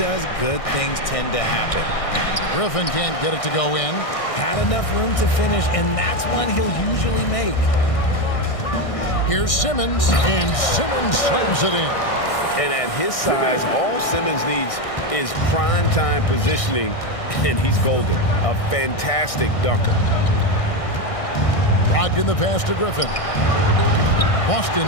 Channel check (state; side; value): late; right; 1.6 ms